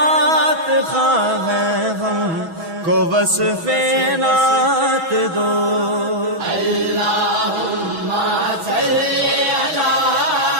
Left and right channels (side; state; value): left; late; 6.1 ms